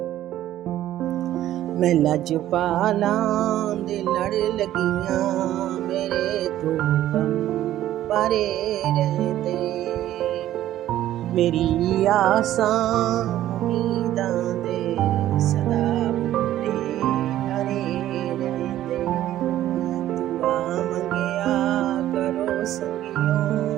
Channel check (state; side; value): quieter; left; 13.1 dB